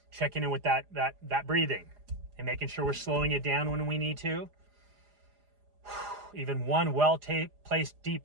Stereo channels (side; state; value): left; late; 4.9 ms